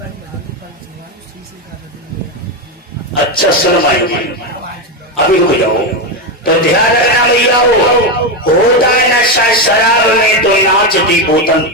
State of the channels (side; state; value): both; normal; correlation 0.10